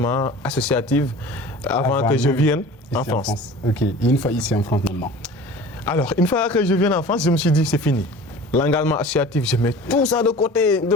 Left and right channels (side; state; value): both; normal; correlation 0.41